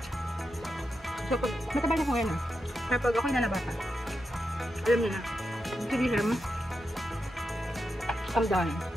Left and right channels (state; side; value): normal; both; correlation 0.87